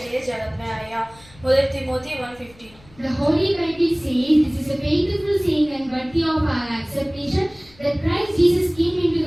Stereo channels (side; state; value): left; noise; rumble, 25 dB below the sound